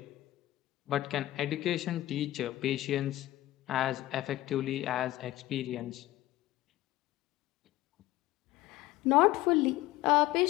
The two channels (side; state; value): right; quieter; 16.3 dB